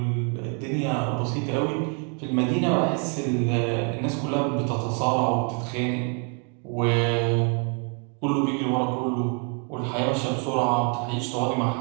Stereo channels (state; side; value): quieter; left; 39.0 dB